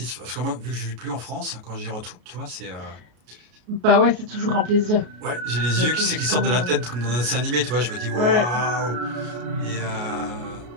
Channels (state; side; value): late; left; 33 ms